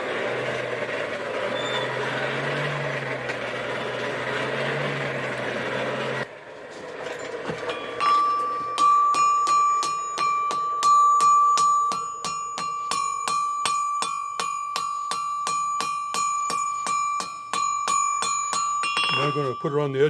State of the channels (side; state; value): both; identical; correlation 1.00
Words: Now I'm going to put it on the